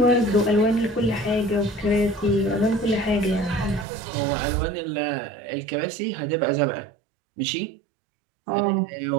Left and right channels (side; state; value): left; drops out; at 3.9 s